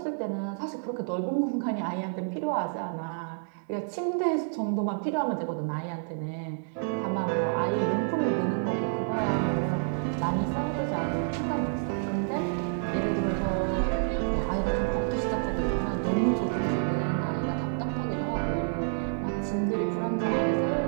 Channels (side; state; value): left; silent; digital silence